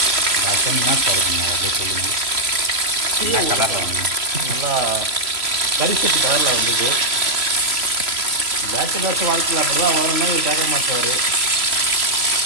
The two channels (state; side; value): late; left; 3.0 ms